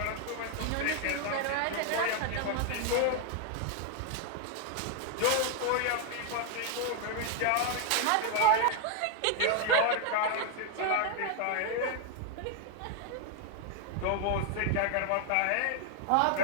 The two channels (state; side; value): different; both; correlation 0.00